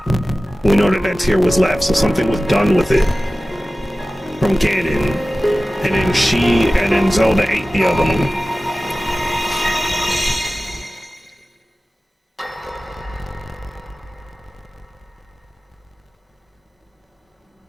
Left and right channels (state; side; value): normal; both; correlation 0.96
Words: we know that tier was left, so something was done with it from Ganon. And then Zelda ate the other one.